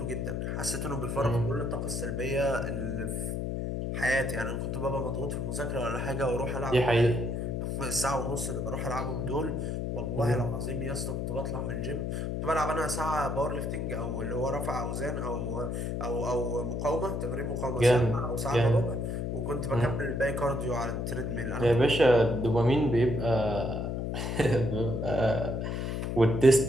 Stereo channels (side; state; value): left; noise; hum, 2 dB below the sound